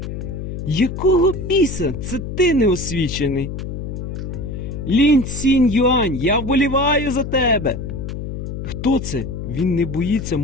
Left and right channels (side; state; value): left; noise; hum, 6 dB below the sound